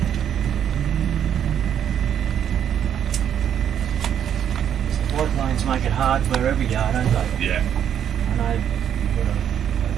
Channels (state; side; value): quieter; left; 9.3 dB